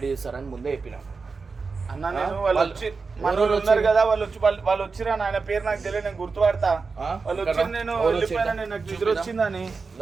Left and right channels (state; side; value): quieter; left; 4.6 dB